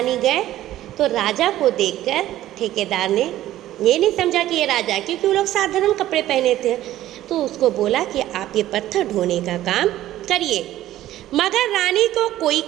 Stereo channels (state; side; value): quieter; left; 13.9 dB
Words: गए तो राजा को देखकर ठेकेदार ने ये नहीं समझा कि ये राजा, क्योंकि वो लोग साधारण कपड़े पहने थे, तो उसको बोला कि आप ये पत्थर ढोने का काम करिए। मगर रानी को कोई